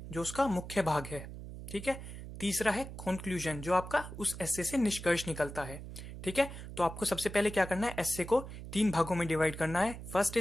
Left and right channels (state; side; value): noise; right; hum, 11 dB below the sound